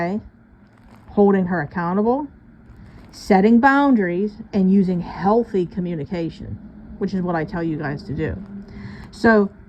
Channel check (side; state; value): both; identical; correlation 1.00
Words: holding her accountable, setting boundaries, and using healthy communication, which is what I tell you guys to do. So